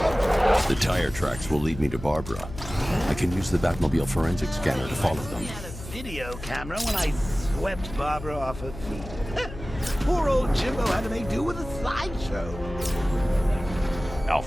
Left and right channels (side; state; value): left; noise; hum, 12 dB below the sound